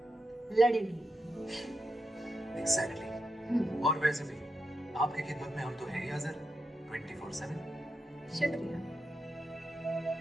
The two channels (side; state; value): both; normal; correlation 0.86